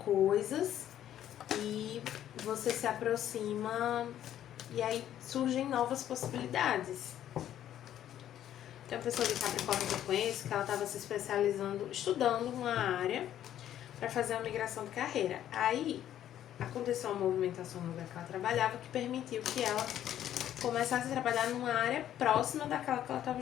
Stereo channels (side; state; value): right; quieter; 11.3 dB